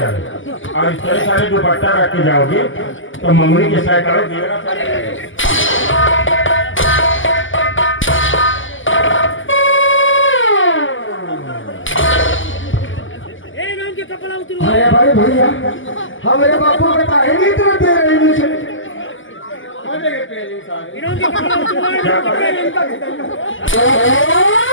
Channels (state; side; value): late; right; 0.57 ms